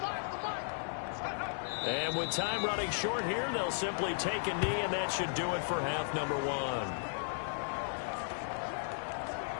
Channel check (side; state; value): right; silent; digital silence